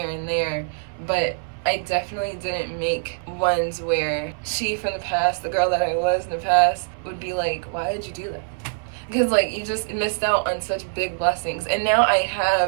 and there, but I definitely didn't make ones where she from the past, the girl that I was in the past, would be like, why did you do that? Because like, you just missed out on such big blessings. And now I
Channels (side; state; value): left; silent; 59 dB below the other